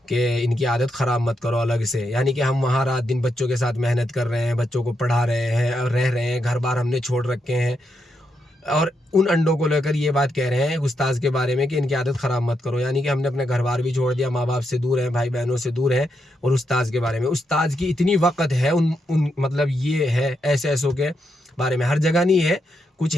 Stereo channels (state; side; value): normal; both; correlation 0.82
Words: کہ ان کی عادت خراب مت کرو الگ سے، یعنی کہ ہم وہاں رات دن بچوں کے ساتھ محنت کر رہے ہیں، بچوں کو پڑھا رہے ہیں اور رہ رہے ہیں، گھر بار ہم نے چھوڑ رکھے ہیں، اور ان انڈوں کو لے کر یہ بات کہہ رہے ہیں استاذ کے بارے میں کہ ان کی عادت خراب مت کرو، یعنی کہ ہم نے اپنے گھر بار بھی چھوڑ دیا، ماں باپ سے دور ہیں، بھائی بہنوں سے دور ہیں، اور استاذ کے بارے میں، استاذ کی اتنی وقت ہے مطلب یہ ہے ایسوں کے بارے میں، ہر جگہ نہیں ہے، کچھ